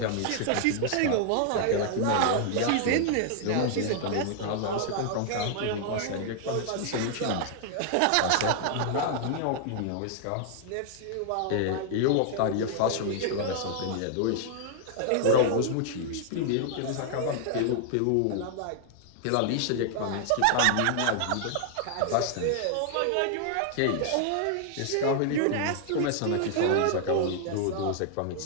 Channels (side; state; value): both; different; correlation 0.00